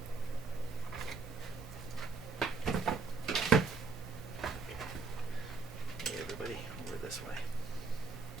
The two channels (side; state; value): left; quieter; 4.4 dB